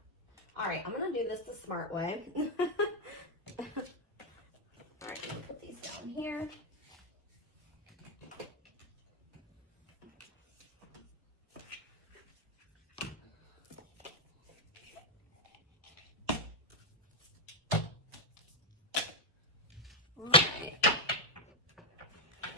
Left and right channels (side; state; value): both; normal; correlation 0.00